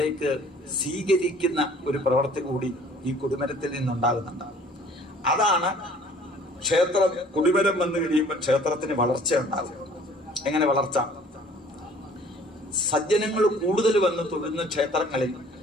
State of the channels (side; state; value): both; normal; correlation 0.53